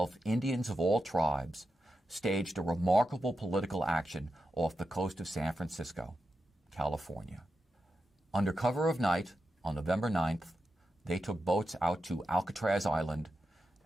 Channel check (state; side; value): normal; both; correlation 0.88